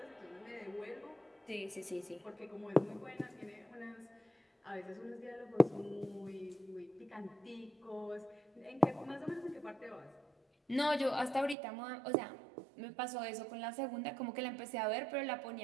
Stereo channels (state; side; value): drops out; left; at 11.6 s